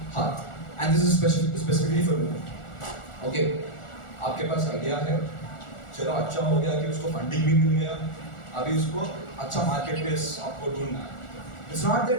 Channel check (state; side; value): late; right; 1.4 ms